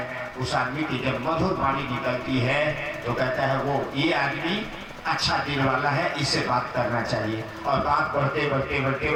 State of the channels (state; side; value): identical; both; correlation 1.00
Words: उस आदमी की जब मधुर वाणी निकलती है तो कहता है वो ये आदमी अच्छा दिल वाला है, इससे बात करना चाहिए। और बात बढ़ते बढ़ते बढ़ते